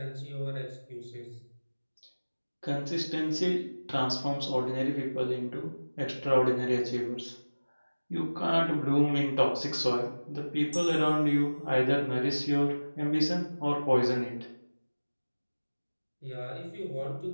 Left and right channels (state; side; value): inverted; both; correlation -1.00